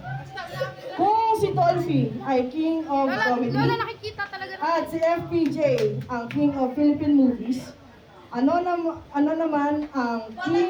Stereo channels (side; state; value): both; identical; correlation 1.00